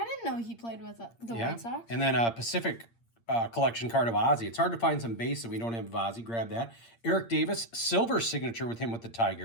didn't know he played with the White Sox. And then a Pacific collection card of Ozzy. It's hard to find some base that we don't have of Ozzy. Grab that. Eric Davis, silver signature with him with the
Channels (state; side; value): late; right; 8.7 ms